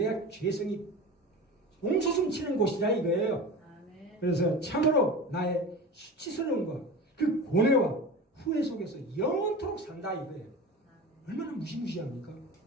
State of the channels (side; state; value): both; normal; correlation 0.31